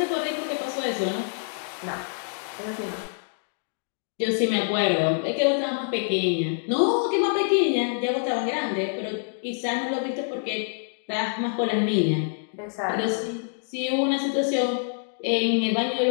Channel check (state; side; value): silent; right; digital silence